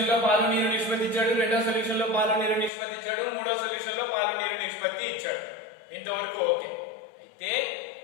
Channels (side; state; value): right; drops out; at 2.7 s